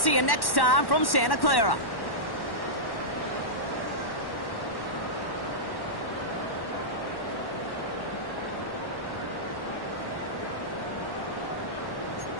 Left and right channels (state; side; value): late; right; 1.1 ms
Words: you next time from Santa Clara.